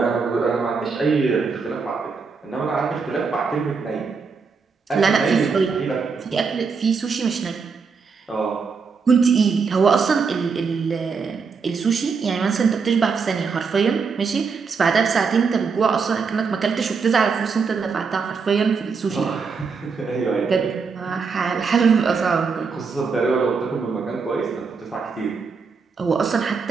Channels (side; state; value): left; quieter; 5.2 dB